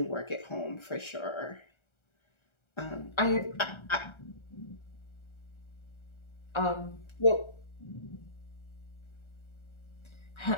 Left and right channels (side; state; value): right; late; 1.3 ms